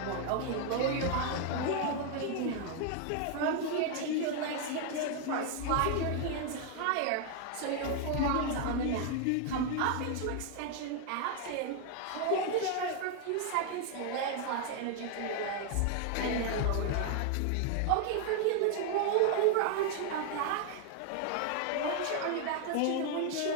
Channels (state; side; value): different; both; correlation 0.00